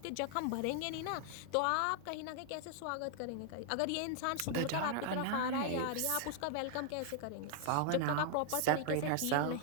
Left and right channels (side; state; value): both; different; correlation 0.00